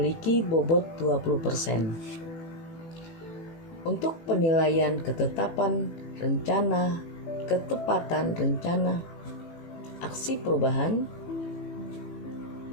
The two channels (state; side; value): late; right; 18 ms